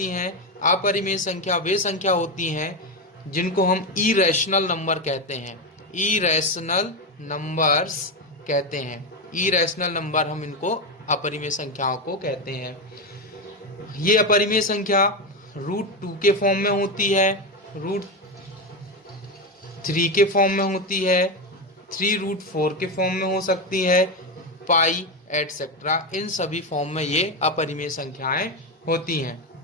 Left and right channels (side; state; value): both; normal; correlation 0.12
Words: हैं? अपरिमेय संख्या वे संख्या होती हैं जिनको हम इरेशनल नंबर कहते हैं। इरेशनल नंबर्स कहते हैं। इरेशनल नंबर हम इनको अपरिमेय संख्याओं को कहते हैं। ये अपरिमेय संख्या √2 के फॉर्म में होती है, √3 के फॉर्म में होती है, 3√4 के फॉर्म में हो सकती है, पाई एटसेट्रा। इन सभी फॉर्म में ये अपरिमेय संख्याएं होती हैं।